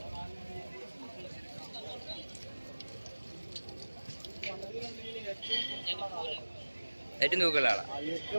ഏറ്റവും തൂക്കമുള്ള ആളാ?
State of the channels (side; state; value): both; inverted; correlation -1.00